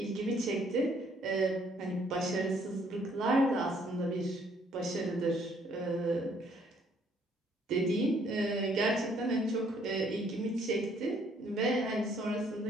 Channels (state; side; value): normal; both; correlation 0.65